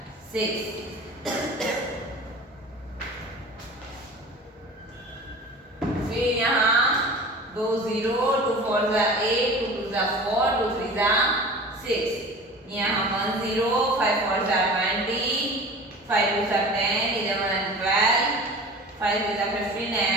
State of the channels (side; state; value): both; normal; correlation 0.38